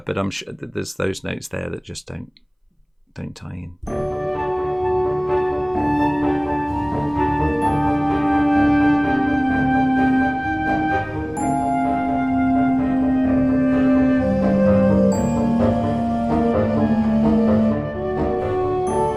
I'm sure that there's those notes there that just don't tie in.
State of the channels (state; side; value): identical; both; correlation 1.00